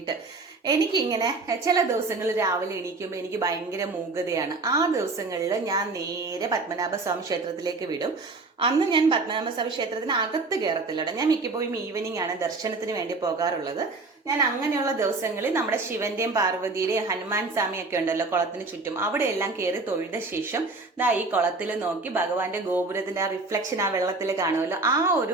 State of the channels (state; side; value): quieter; left; 3.6 dB